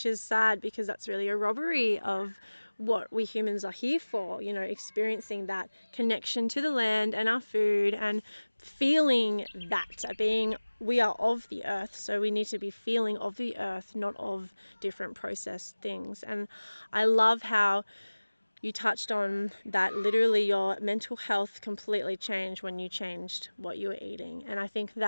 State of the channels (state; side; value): inverted; both; correlation -1.00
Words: is sad because that's really a robbery of what we humans are here for, you know, experiencing that connection to the land and our food and feeling that being we are of the earth, so we need to be feeling of the earth, not of different processed things. And I love how you touched on that literally your mental health completely changed when you changed what you were eating. And I think